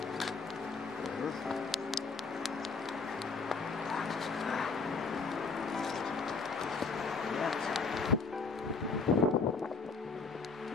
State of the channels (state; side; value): quieter; right; 4.6 dB